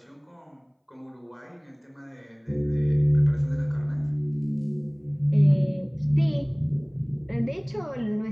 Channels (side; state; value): both; identical; correlation 1.00